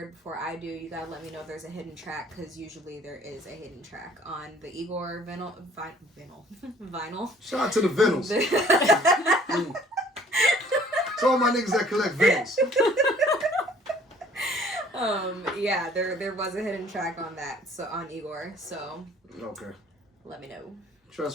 before I do, you gotta let me know if there's a hidden track, because usually there is a hidden track on the Igor vinyl. Shout out to the vinyls. To all my niggas that collect vinyls. Yeah, there was a hidden track on that, so on Igor. So okay. Let me know.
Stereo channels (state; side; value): normal; both; correlation 0.56